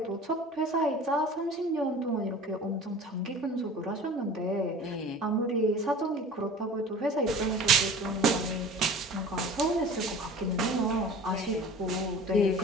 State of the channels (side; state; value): both; normal; correlation 0.41